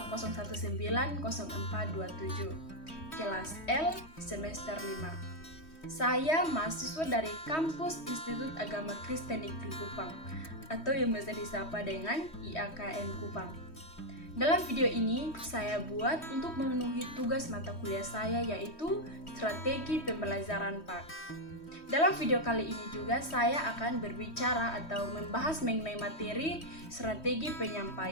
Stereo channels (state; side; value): late; right; 3.1 ms